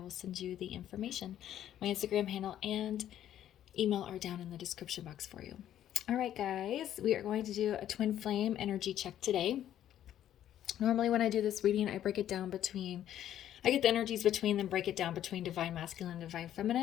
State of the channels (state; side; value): quieter; right; 11.3 dB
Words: send you the information. My Instagram handle and email are down in the description box for you. All right guys, we are going to do a twin flame energy check today. Normally when I do this reading, I break it down between, I get the energies between them, break it down between divine masculine and divine